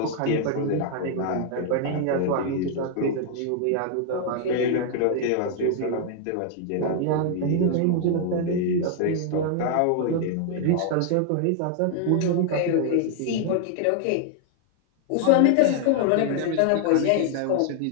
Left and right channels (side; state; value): both; different; correlation 0.00